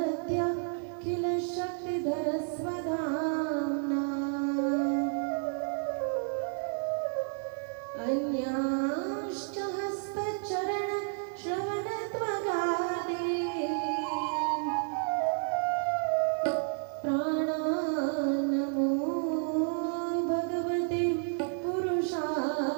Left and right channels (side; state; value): left; silent; 57 dB below the other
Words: किल शक्तिधरस्वधाम्ना अन्यांश्च हस्तचरणश्रवणत्वगादीन् प्राणान्नमो भगवते